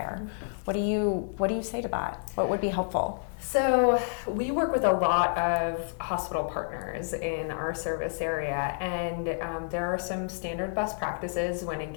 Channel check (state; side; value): silent; right; digital silence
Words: What do you say to that? What would be helpful? So we work with a lot of hospital partners in our service area, and there are some standard best practices when